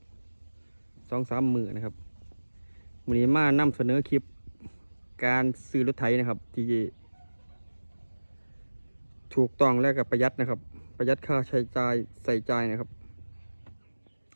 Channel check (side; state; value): both; inverted; correlation -1.00